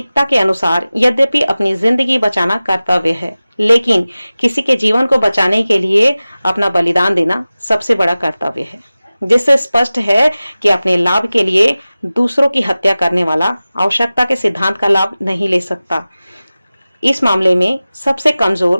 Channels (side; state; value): both; inverted; correlation -0.97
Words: के अनुसार यद्यपि अपनी जिंदगी बचाना कर्तव्य है, लेकिन किसी के जीवन को बचाने के लिए अपना बलिदान देना सबसे बड़ा कर्तव्य है, जिससे स्पष्ट है कि अपने लाभ के लिए दूसरों की हत्या करने वाला आवश्यकता के सिद्धांत का लाभ नहीं ले सकता। इस मामले में सबसे